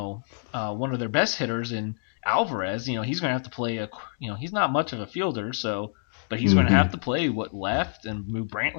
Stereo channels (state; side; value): silent; right; digital silence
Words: of their best hitters in Alvarez, he's going to have to play he's not much of a fielder, but he's going to have to play left and move